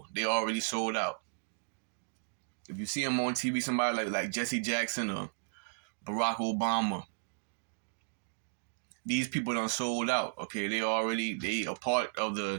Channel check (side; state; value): left; silent; digital silence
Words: They already sold out. If you see them on TV, somebody like Jesse Jackson or Barack Obama, these people done sold out. Okay, they a part of